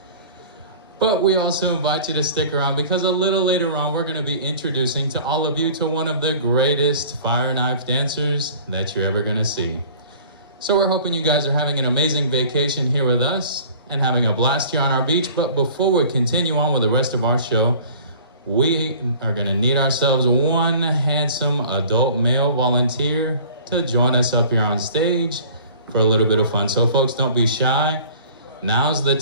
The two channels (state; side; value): inverted; both; correlation -0.47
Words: But we also invite you to stick around, because a little later on we're gonna be introducing to all of you to one of the greatest fire knife dancers that you're ever gonna see. So we're hoping you guys are having an amazing vacation here with us and having a blast here on our beach. But before we continue on with the rest of our show, we are gonna need ourselves one handsome adult male volunteer to join us up here on stage for a little bit of fun. So folks, don't be shy. Now's the